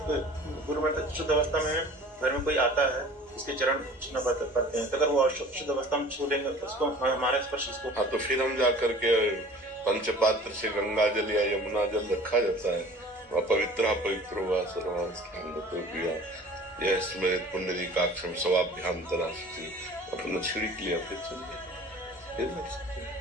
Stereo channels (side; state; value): both; normal; correlation 0.45